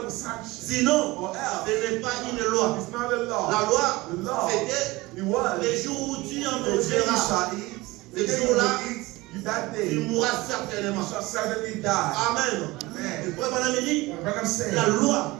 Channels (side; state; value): left; quieter; 21.1 dB